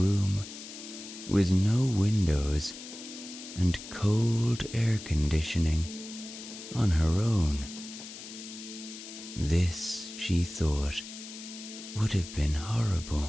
with no windows and cold air conditioning on her own. This, she thought, would have been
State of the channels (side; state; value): left; noise; hiss, 13 dB below the sound